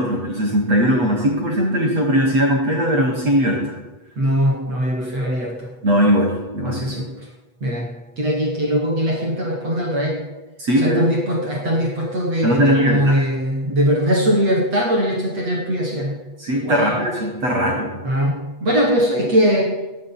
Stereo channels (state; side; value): late; left; 8.2 ms